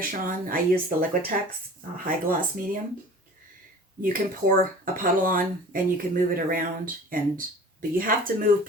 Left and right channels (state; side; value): normal; both; correlation 0.43